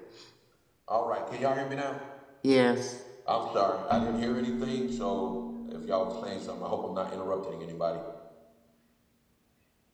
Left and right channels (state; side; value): identical; both; correlation 1.00